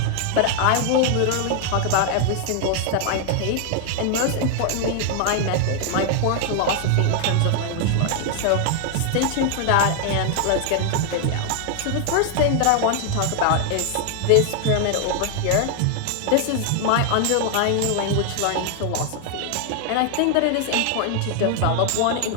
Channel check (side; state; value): both; different; correlation 0.00